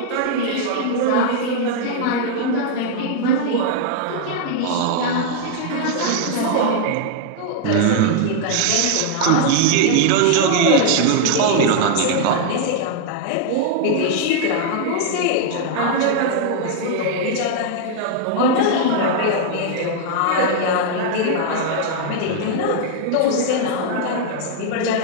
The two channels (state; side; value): different; both; correlation 0.00